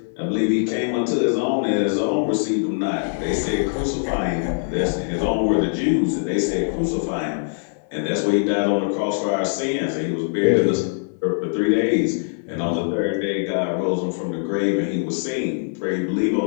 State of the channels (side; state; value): right; silent; 61 dB below the other